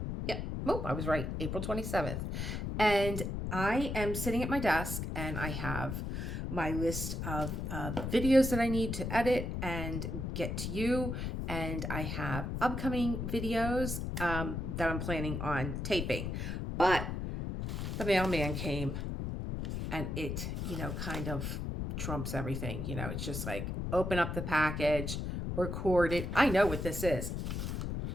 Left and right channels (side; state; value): left; noise; rumble, 3 dB below the sound